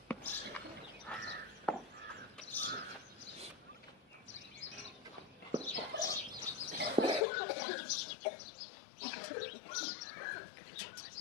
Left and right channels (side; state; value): right; drops out; at 7.2 s